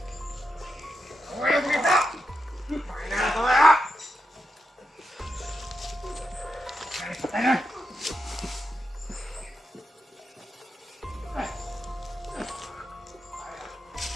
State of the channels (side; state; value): both; normal; correlation 0.87